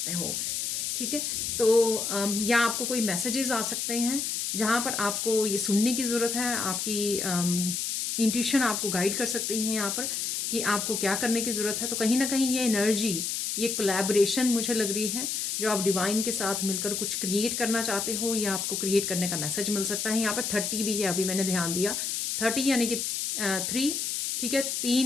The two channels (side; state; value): left; noise; hiss, 1 dB below the sound